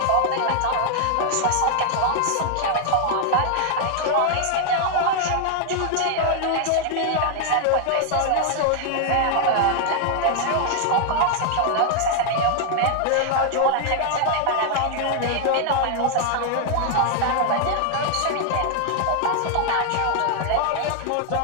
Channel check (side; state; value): both; different; correlation 0.00